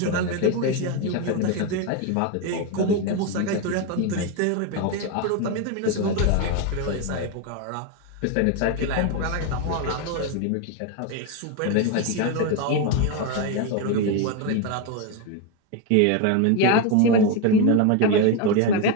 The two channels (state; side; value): different; both; correlation 0.02